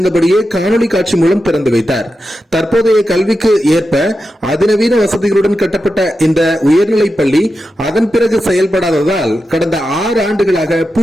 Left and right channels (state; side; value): normal; both; correlation 0.90